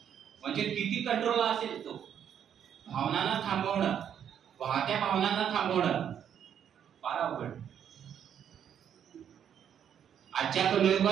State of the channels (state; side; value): quieter; left; 8.9 dB